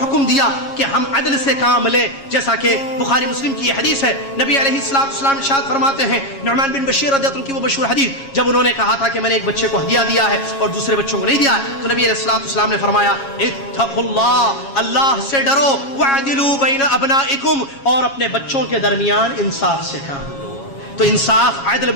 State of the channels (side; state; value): right; late; 7.3 ms